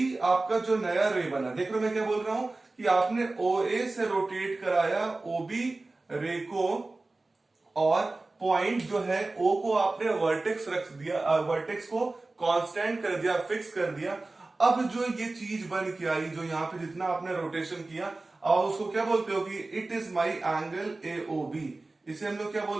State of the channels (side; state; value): left; quieter; 3.2 dB